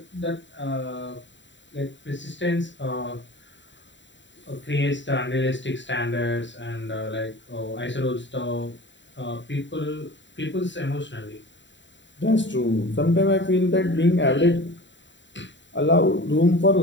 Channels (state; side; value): late; right; 0.53 ms